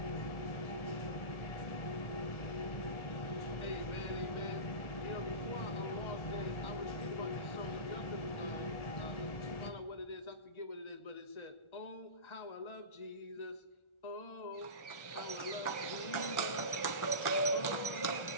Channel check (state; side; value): late; right; 1.4 ms